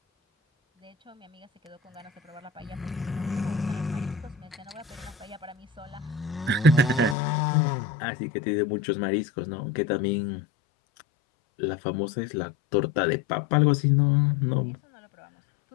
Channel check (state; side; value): drops out; right; at 7.2 s